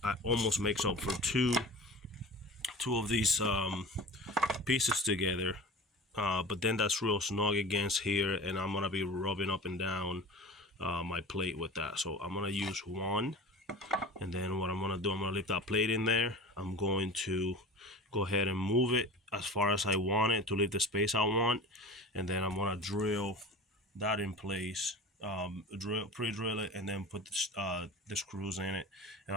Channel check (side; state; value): both; normal; correlation 0.36